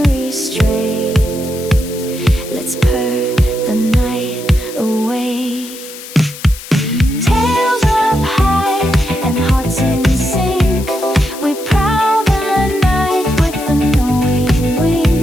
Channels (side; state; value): left; noise; hiss, 14 dB below the sound